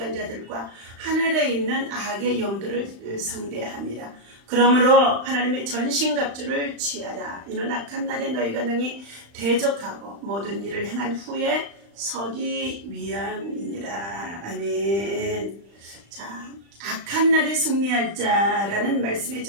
하늘에 있는 악의 영들을 상대함이라. 그러므로 하나님의 전신갑주를 취하라. 이는 악한 날에 너희가 능히 대적하고 모든 일을 행한 후에 서기 위함이니라. 아멘. 자, 악한 날에 승리할 자라는 말씀의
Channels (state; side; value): late; left; 35 ms